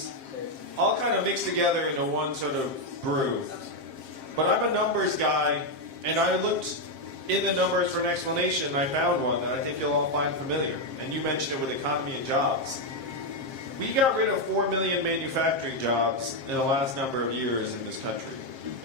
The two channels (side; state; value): left; late; 7.5 ms